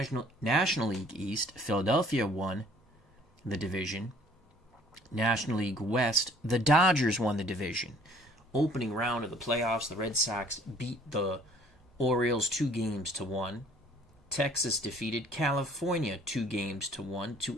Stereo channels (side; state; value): both; normal; correlation 0.56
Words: National League East, Philadelphia won the division. National League West, the Dodgers won the division. Opening round of the playoffs, the Red Sox beat the Orioles 2-1. Texas defeated California 2-1 to